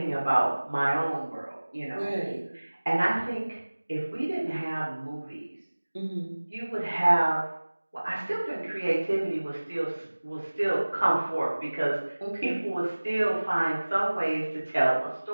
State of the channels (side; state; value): both; inverted; correlation -1.00